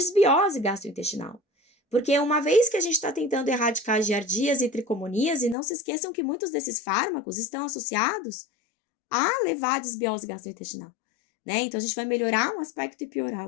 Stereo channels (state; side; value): drops out; right; at 5.6 s